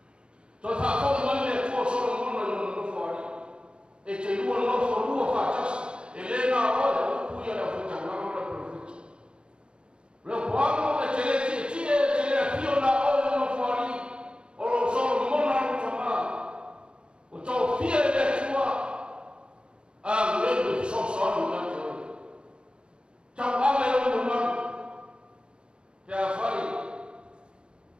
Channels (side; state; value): left; late; 0.053 ms